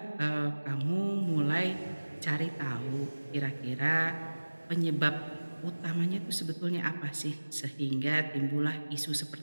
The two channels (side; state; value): both; inverted; correlation -1.00